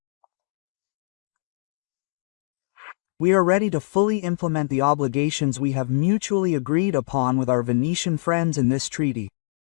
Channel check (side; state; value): right; silent; digital silence